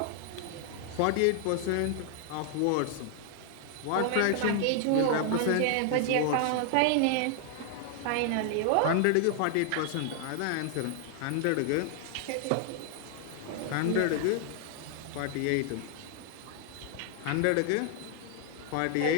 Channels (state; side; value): different; both; correlation 0.00